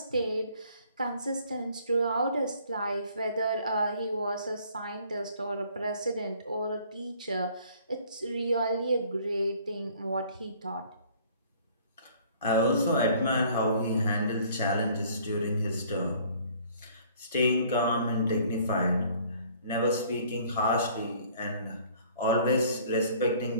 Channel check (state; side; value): inverted; both; correlation -0.56